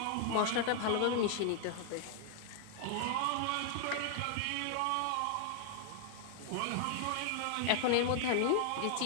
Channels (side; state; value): both; different; correlation 0.00